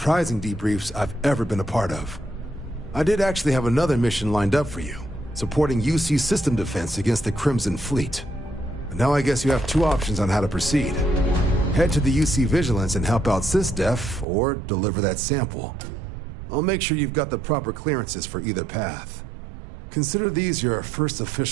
debriefs I've ever been a part of. I did actually have another mission lined up for you, supporting UC system defense against the Crimson Fleet. But now I guess you have two options on how to proceed. Head to the UC Vigilance and help out SysDef, or deliver that sample. I'll make sure you've got the proper clearances for either path. Consider these your first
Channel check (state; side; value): drops out; left; at 14.2 s